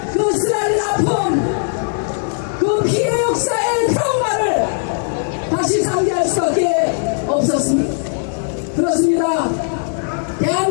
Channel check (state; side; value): silent; right; 56 dB below the other